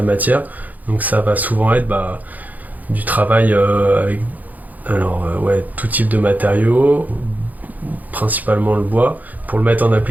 matière. Donc ça va souvent être du travail avec tout type de matériaux, principalement le bois, pour le mettre en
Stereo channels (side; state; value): left; late; 0.081 ms